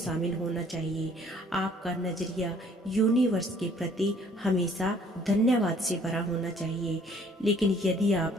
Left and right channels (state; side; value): normal; both; correlation 0.58